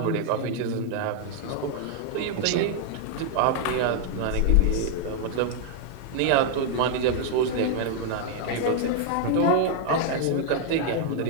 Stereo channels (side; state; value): both; different; correlation 0.00